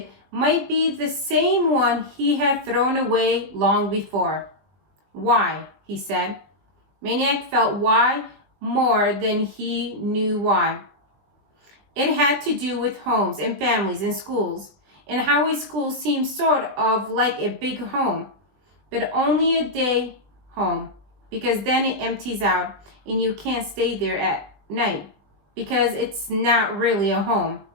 might be the same one he had thrown away long before. Why? He said. Maniac felt why more than he knew why. It had to do with homes and families and schools, and how a school seemed sort of like a big home, but only a day home, because then it empties out and you can't stay there at night, because it's not really a home,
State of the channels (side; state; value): left; late; 20 ms